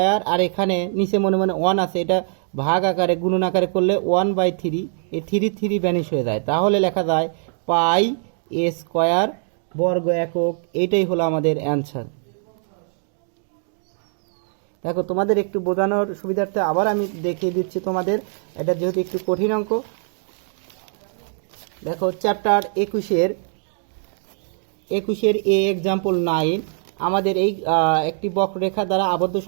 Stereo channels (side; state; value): left; silent; 64 dB below the other